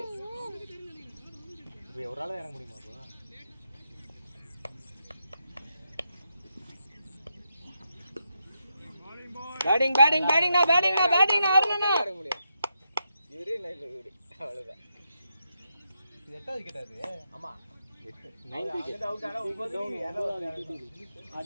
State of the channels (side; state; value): both; inverted; correlation -0.84